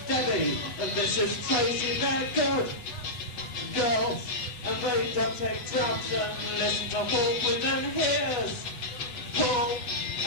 Debbie, and this is Tracy, they're good girls, and they don't take drugs and listen to Paul with them. Here's Paul,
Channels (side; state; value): right; late; 8.2 ms